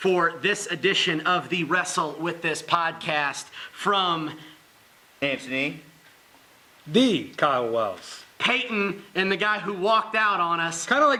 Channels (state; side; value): identical; both; correlation 1.00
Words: this edition of the Wrestle With This podcast from Anthony. The Kyle Wells. Peyton and the guy who walked out on us. Kind of